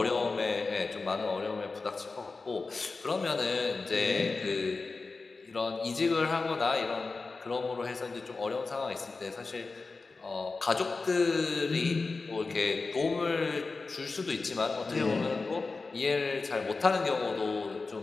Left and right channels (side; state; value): right; quieter; 4.0 dB